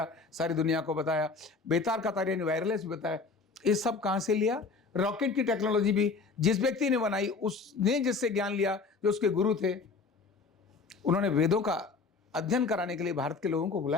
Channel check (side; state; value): right; quieter; 4.4 dB